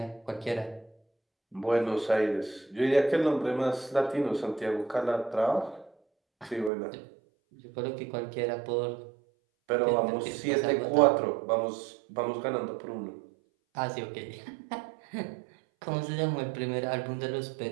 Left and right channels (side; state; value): left; drops out; at 6.7 s